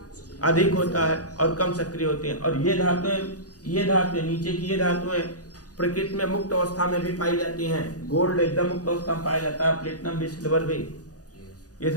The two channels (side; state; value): right; late; 0.68 ms